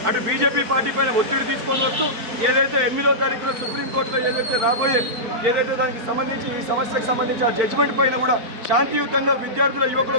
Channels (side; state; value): left; late; 4.7 ms